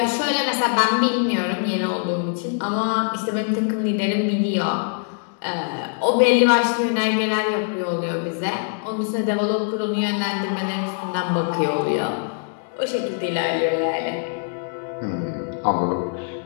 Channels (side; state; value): right; silent; 64 dB below the other